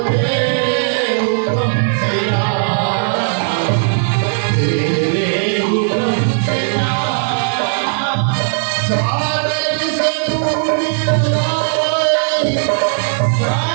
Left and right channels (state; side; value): silent; left; 60 dB below the other